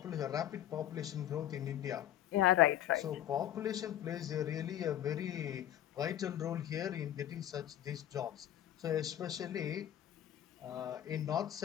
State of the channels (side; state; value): right; quieter; 11.7 dB